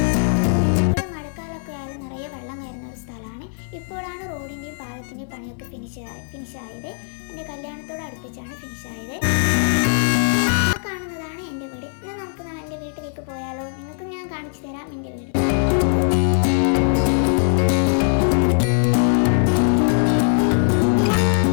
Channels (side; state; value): right; silent; 61 dB below the other